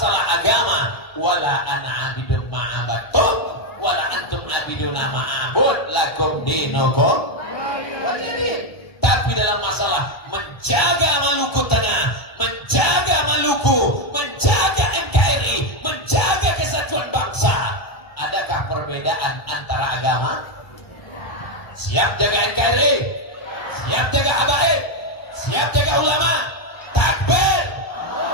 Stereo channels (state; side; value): late; right; 1.3 ms